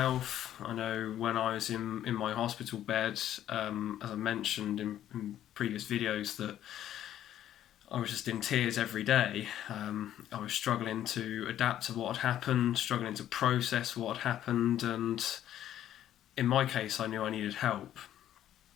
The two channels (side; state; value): right; quieter; 11.6 dB